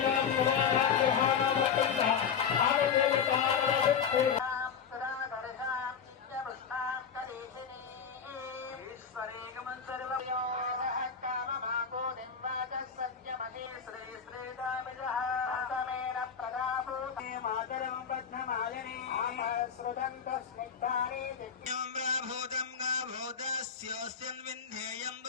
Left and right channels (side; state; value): right; quieter; 6.9 dB